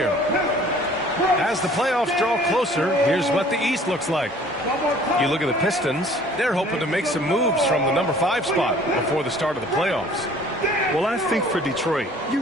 As the playoffs draw closer, here's what the East looks like. You look at the Pistons, they're hoping to make some moves from the number 5 spot before the start of the playoffs. Well, I think for Detroit, you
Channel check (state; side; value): normal; both; correlation 0.52